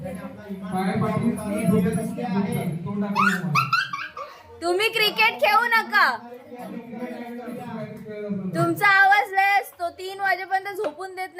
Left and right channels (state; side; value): identical; both; correlation 1.00